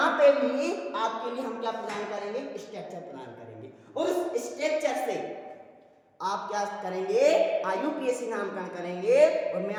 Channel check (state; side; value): identical; both; correlation 1.00